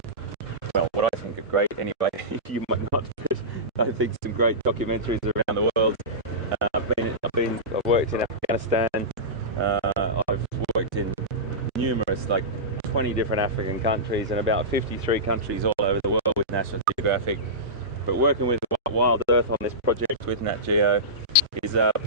well, what I think are great anyway, you might not, but I think some great documentaries around the world. I've worked in Afghanistan, I've worked in numerous, like 20 different African countries and about 53 countries all over the world with National Geographic. But working with Wild Earth on this project with Nat Geo is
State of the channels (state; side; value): normal; both; correlation -0.17